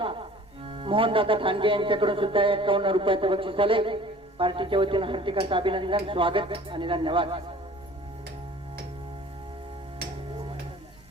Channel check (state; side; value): normal; both; correlation 0.48